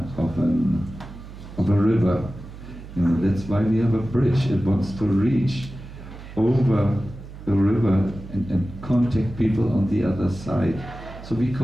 a river. You know, that's why we have a bridge. It wants to reach over the river and contact people on the other side. So we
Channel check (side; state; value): right; noise; hum, 15 dB below the sound